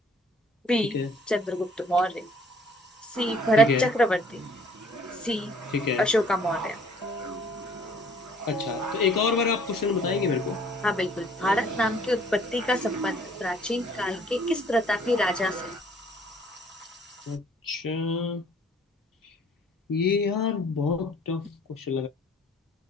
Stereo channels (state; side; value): normal; both; correlation 0.57